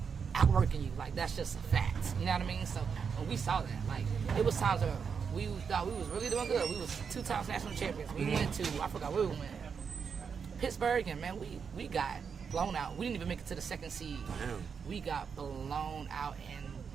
outworking you. Like that's just a fact. You know what I mean? So when we saw that, like it was times where we thought we was really doing good. We was 2 times national champions. We went to, I forgot where we went, Pittsburgh, and man, we got blown out. We didn't even make it to the second seed. Damn. We got blown out, and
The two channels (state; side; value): quieter; left; 6.3 dB